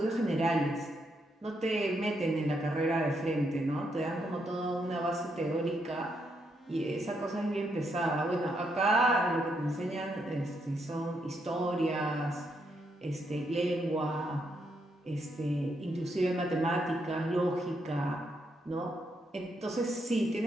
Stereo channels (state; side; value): normal; both; correlation 0.78